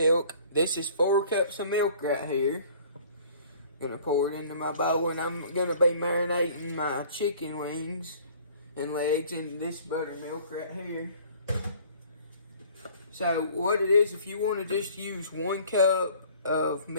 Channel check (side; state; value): both; inverted; correlation -0.52